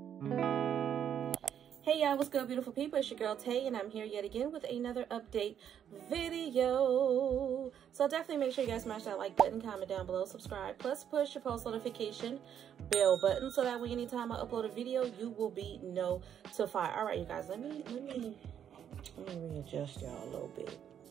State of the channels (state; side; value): quieter; left; 9.1 dB